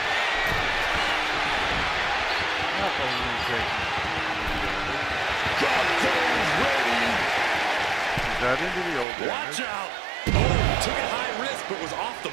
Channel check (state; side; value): drops out; left; at 9.1 s